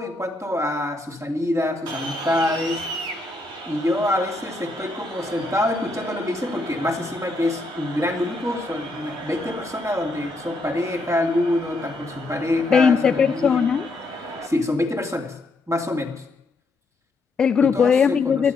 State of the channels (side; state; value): right; quieter; 3.1 dB